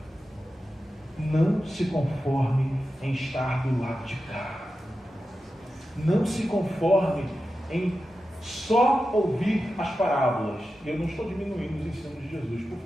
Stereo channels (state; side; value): normal; both; correlation 0.91